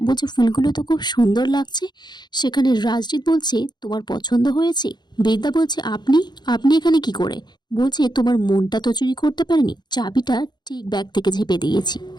বলছে ফুলগুলো তো খুব সুন্দর লাগছে। সেখানে রাজদীপ বলছে তোমার পছন্দ হয়েছে? বিদ্যা বলছে আপনি আপনি এখানে কি করে? বলছে তোমার মনটা তো চুরি করতে পারেনি, চাবিটা ঠিক ব্যাগ থেকে ঝেপে দিয়েছি।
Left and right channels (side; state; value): right; late; 0.21 ms